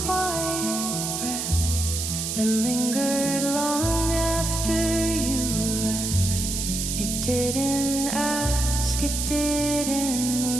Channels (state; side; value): noise; right; hiss, 3 dB below the sound